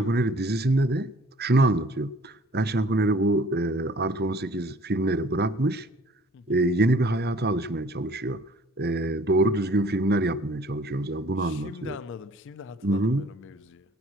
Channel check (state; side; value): normal; both; correlation 0.54